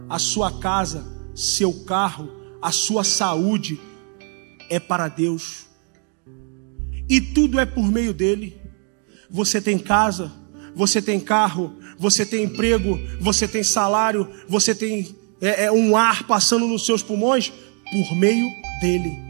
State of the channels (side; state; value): left; quieter; 39.8 dB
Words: a sua casa, seu carro, a sua saúde é para Deus. E tudo é por meio dele. Você tem casa, você tem carro, você tem emprego, você tem salário, você tem um ar passando nos seus pulmões por meio dele.